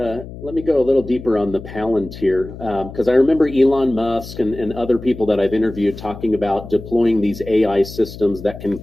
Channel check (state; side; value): noise; left; hum, 13 dB below the sound